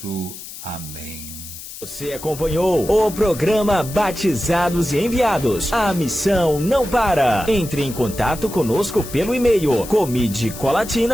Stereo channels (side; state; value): left; noise; hiss, 13 dB below the sound